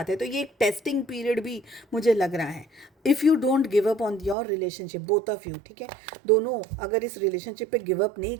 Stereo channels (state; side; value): drops out; left; at 4.4 s